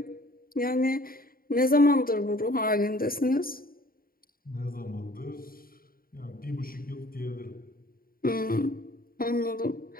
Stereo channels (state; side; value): late; right; 0.42 ms